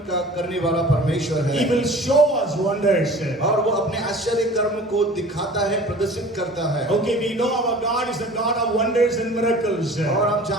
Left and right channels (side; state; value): both; normal; correlation 0.44